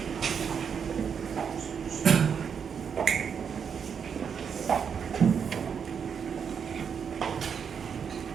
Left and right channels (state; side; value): quieter; left; 7.0 dB